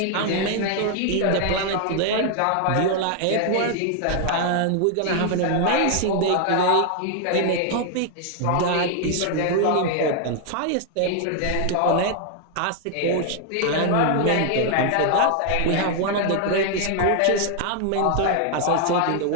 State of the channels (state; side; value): different; both; correlation 0.00